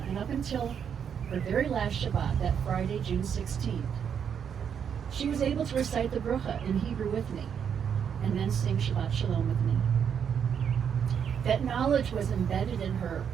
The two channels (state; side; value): quieter; left; 7.7 dB